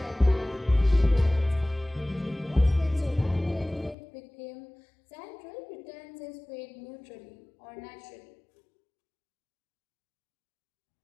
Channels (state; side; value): drops out; right; at 4.0 s